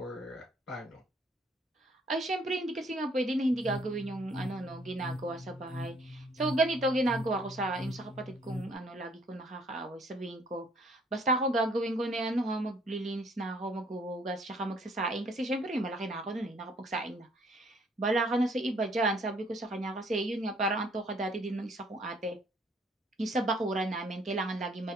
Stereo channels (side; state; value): both; normal; correlation 0.63